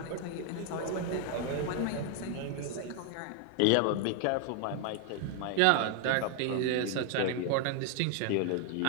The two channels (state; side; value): different; both; correlation 0.00